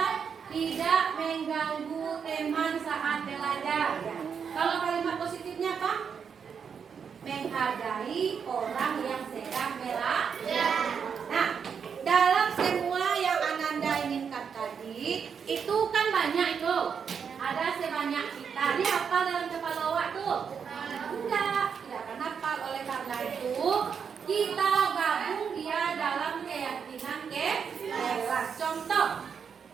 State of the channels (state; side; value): quieter; left; 6.7 dB